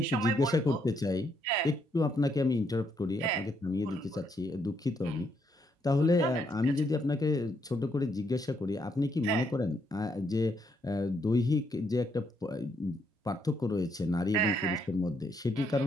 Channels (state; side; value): normal; both; correlation 0.75